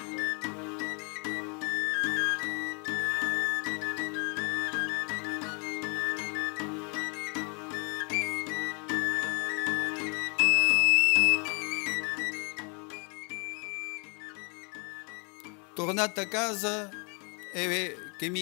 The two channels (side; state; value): right; quieter; 35.8 dB